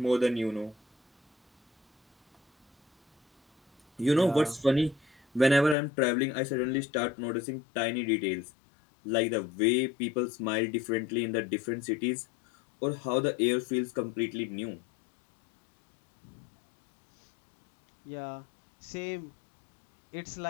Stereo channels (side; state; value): right; drops out; at 5.8 s